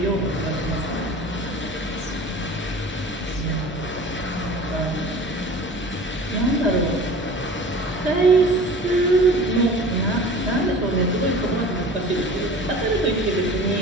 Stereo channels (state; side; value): normal; both; correlation 0.41